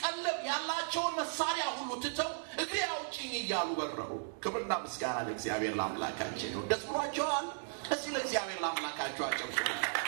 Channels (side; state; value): left; silent; digital silence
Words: ቀለብ ያላቸውን መሳሪያ ሁሉ ትተው እግሬ አውጪኝ እያሉ በረሩ። ክብርና ምስጋና ለእግዚአብሔር ለአምላካችን ነው። ደስ ብሏቸዋል። እስቲ ለእግዚአብሔር ለአምላካቸው አጨብጭቡ።